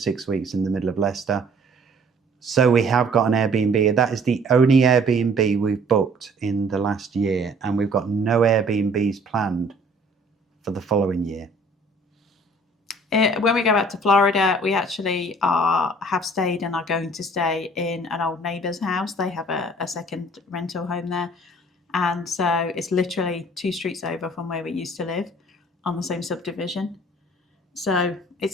weeks in the middle of Leicester. So we have got an Airbnb. That is the only Airbnb we've booked in the last year, and we've got no Airbnbs planned for the following year. When we go back to Florida, we actually have stayed and are going to stay in an old neighbour's house. They have a second rental home there. And so it's literally 2 streets over from where we used to live on the same subdivision. So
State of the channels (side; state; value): both; normal; correlation 0.55